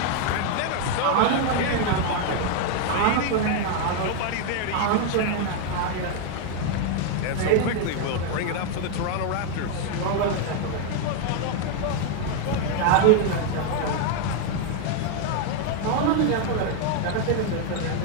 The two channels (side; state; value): both; different; correlation 0.01